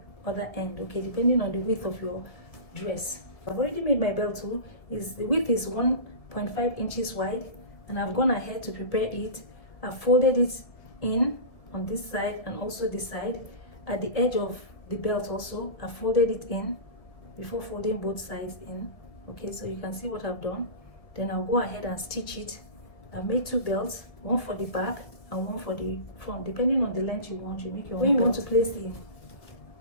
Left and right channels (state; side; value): late; right; 1.7 ms